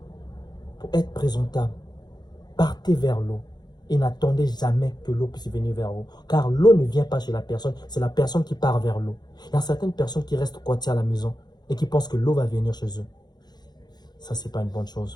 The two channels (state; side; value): late; right; 0.20 ms